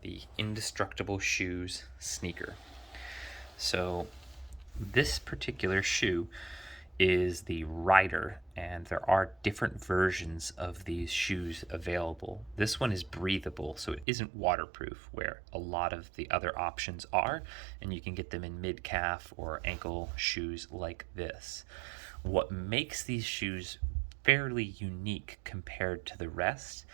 the Indestructible Shoes sneaker. So this particular shoe is the Rider, and there are different versions of these shoes available. This one is breathable, so it isn't waterproof, where a lot of the other options are, and you can get them in mid-calf or ankle shoes like this. What makes these shoes fairly unique compared to the rest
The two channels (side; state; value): left; drops out; at 14.1 s